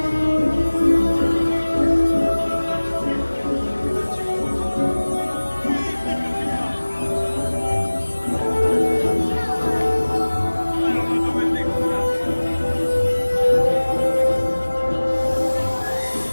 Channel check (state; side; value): inverted; both; correlation -1.00